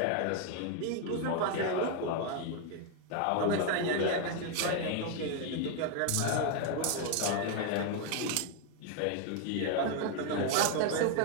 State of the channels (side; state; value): both; different; correlation 0.01